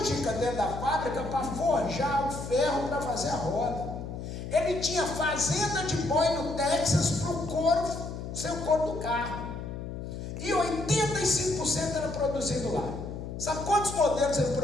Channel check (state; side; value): noise; left; hum, 7 dB below the sound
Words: dentro da fábrica para forjar o ferro para fazer a roda. Ele tinha fazenda de boi no Texas para o couro, ser o couro do carro. E 85% era produzido lá. Sabe quantos modelos ele